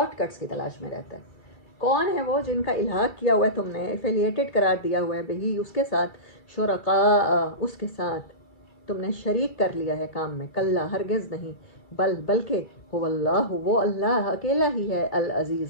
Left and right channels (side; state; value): right; late; 2.3 ms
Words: کٹس کی تلاش میں رہتا ہے۔ کون ہے وہ جن کا الحاق کیا ہوا ہے تم نے، ایفیلیٹڈ قرار دیا ہوا ہے بہی اس کے ساتھ، شرکاء اس کے ساتھ تم نے شریک کر لیا ہے کام میں، کلا ہرگز نہیں، بلکہ هو اللہ، وہ اللہ اکیلا ہی ہے،